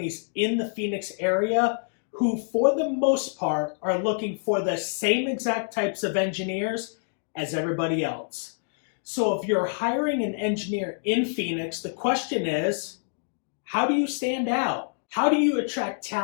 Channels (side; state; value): right; silent; digital silence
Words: in the Phoenix area who, for the most part, are looking for the same exact types of engineers as everybody else. So if you're hiring an engineer in Phoenix, the question is, how do you stand out? How do you attract